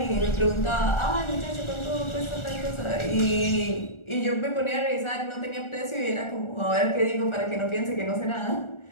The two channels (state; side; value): late; right; 1.4 ms